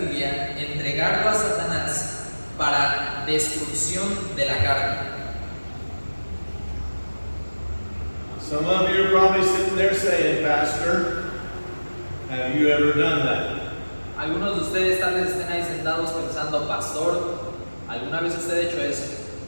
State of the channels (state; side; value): inverted; both; correlation -1.00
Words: entregarlo a Satanás para destrucción de la carne. Some of you are probably sitting there saying, Pastor, have you ever done that? Algunos de ustedes tal vez estén ahí sentados pensando, pastor, ¿alguna vez usted ha hecho eso?